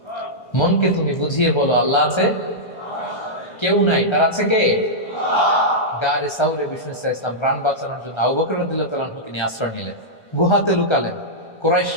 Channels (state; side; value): late; right; 1.3 ms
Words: মনকে তুমি বুঝিয়ে বলো আল্লাহ আছে, কেউ নাই, তার আছে কে? গারে সাউরে বিষ্ণু ইসলাম প্রাণ বাঁচানোর জন্য আবু বকর রাদিয়াল্লাহু তাআলা আনহুকে নিয়ে আশ্রয় নিলেন, গুহাতে লুকালেন।